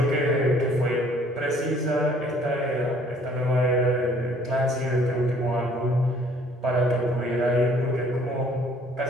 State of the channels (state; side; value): normal; both; correlation 0.58